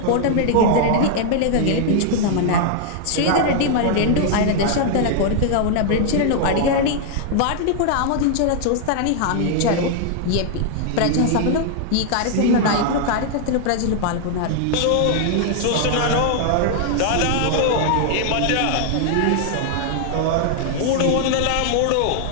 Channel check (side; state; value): both; different; correlation 0.00